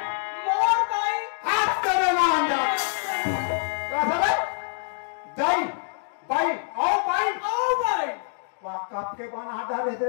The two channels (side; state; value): right; silent; digital silence